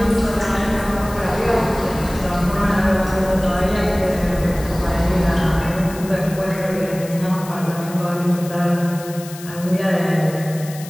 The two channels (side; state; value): left; noise; hiss, 16 dB below the sound